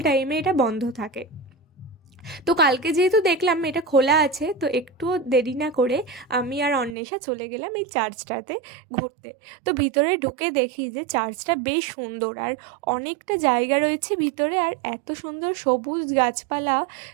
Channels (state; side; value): drops out; left; at 7.0 s